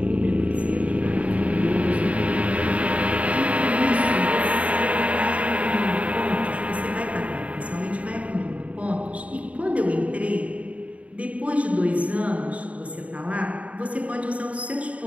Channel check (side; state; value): left; late; 0.066 ms